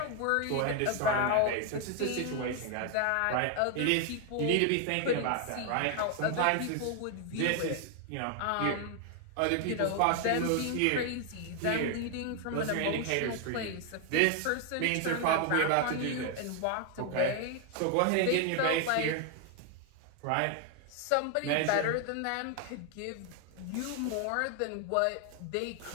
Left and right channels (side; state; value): both; different; correlation 0.00